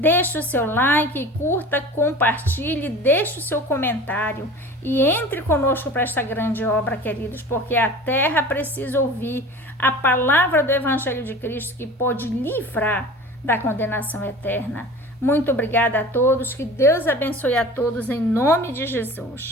o seu like, curta, compartilhe, deixe o seu comentário e entre conosco para esta grande obra, queridos, porque a terra precisa ouvir a palavra do Evangelho de Cristo que pode livrar da condenação eterna. Muito obrigada a todos, que Deus abençoe a todos em nome de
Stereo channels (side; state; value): both; normal; correlation 0.39